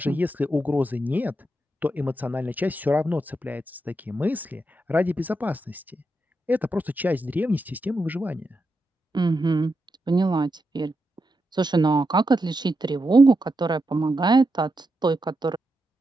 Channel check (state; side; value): normal; both; correlation 0.85